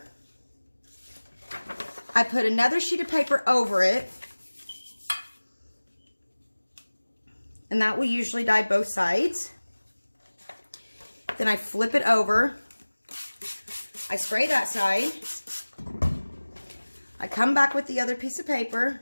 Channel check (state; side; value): inverted; both; correlation -1.00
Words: I put another sheet of paper over it, and that will usually dye both sides. Then I flip it over. I spray that side. I come back with the other piece of paper.